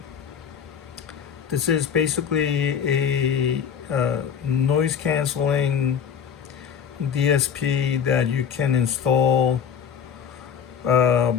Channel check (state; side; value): quieter; right; 7.6 dB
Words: This is basically a noise canceling DSP that you can install